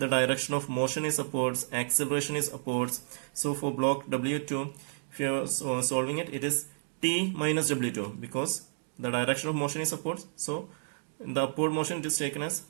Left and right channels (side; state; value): left; silent; digital silence